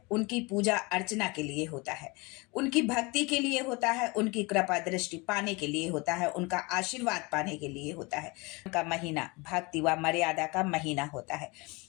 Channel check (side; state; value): right; quieter; 26.3 dB